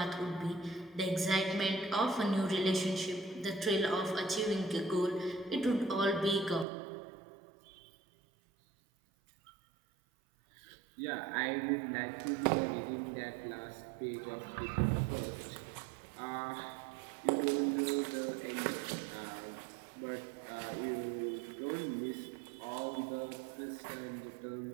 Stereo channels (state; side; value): drops out; left; at 6.7 s